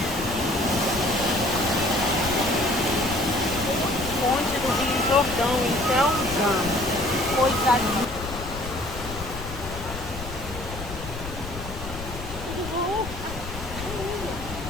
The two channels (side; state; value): left; noise; rumble, 10 dB below the sound